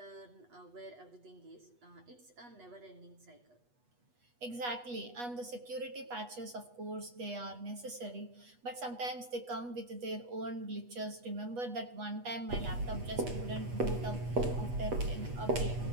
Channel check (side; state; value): left; late; 8.2 ms